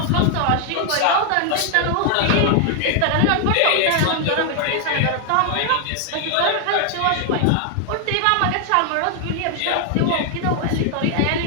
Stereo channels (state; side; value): different; both; correlation 0.00